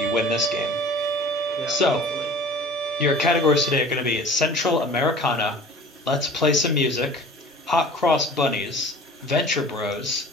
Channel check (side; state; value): both; normal; correlation 0.43